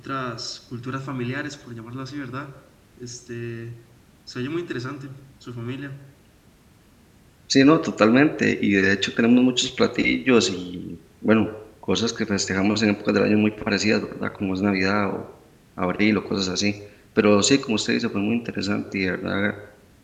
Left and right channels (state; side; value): identical; both; correlation 1.00